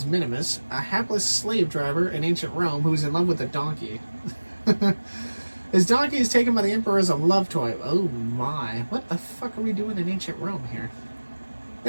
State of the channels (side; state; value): both; inverted; correlation -1.00